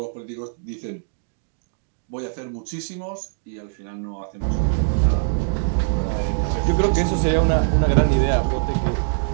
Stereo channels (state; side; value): silent; left; digital silence